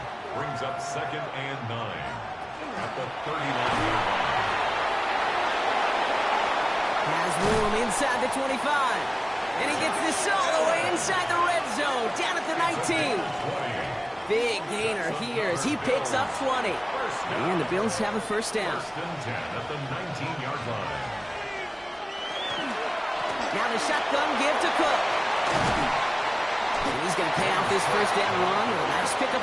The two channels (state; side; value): identical; both; correlation 1.00